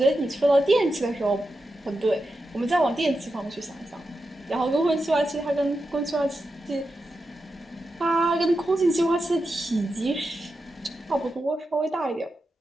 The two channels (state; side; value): normal; both; correlation 0.89